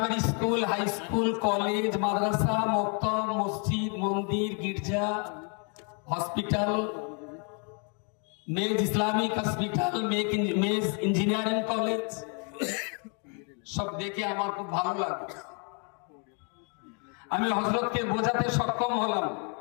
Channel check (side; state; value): right; quieter; 38.1 dB